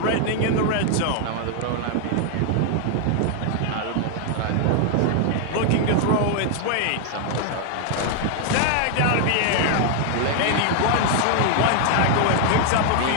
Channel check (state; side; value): different; both; correlation 0.00